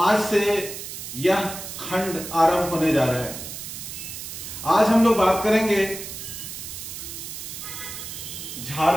से यह खंड आरंभ होने जा रहा है। आज हम लोग बात करेंगे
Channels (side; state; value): right; noise; hiss, 9 dB below the sound